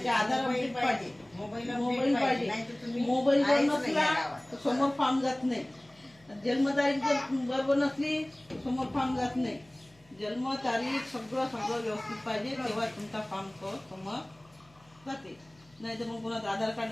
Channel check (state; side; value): noise; left; hum, 30 dB below the sound